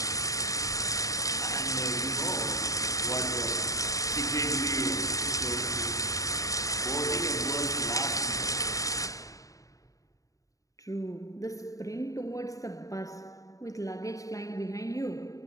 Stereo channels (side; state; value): right; late; 0.16 ms